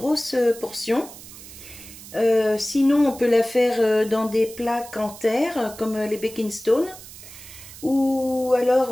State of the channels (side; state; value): right; noise; hiss, 16 dB below the sound